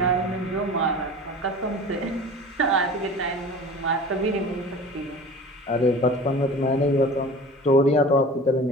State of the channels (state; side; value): normal; both; correlation 0.39